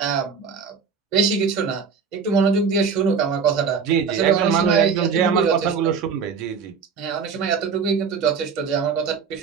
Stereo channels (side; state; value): left; quieter; 5.9 dB